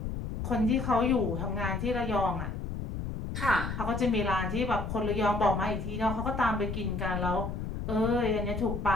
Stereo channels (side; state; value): left; noise; rumble, 5 dB below the sound